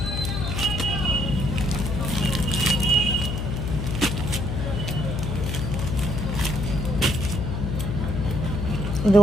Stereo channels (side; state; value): left; noise; hum, 2 dB below the sound